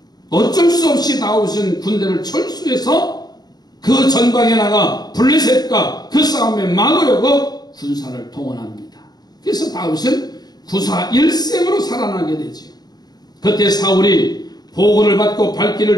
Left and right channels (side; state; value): right; late; 0.19 ms